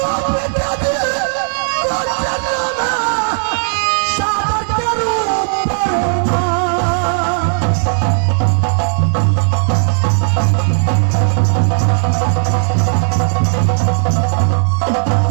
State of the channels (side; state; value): left; silent; digital silence